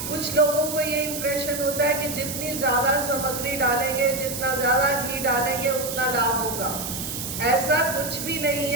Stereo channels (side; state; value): right; noise; hiss, 6 dB below the sound